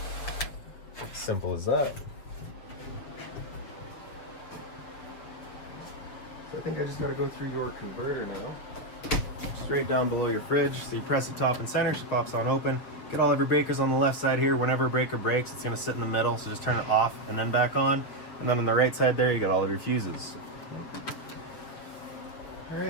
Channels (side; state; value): right; late; 7.2 ms